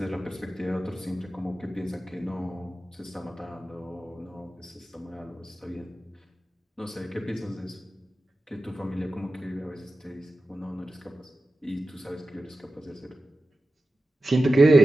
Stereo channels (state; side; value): normal; both; correlation 0.93